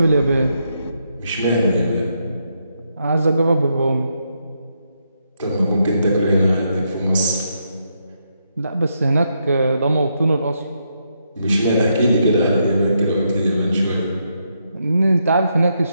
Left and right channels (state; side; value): inverted; both; correlation -0.79